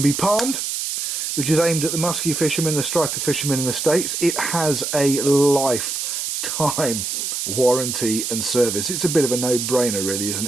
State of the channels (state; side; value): noise; right; hiss, 3 dB below the sound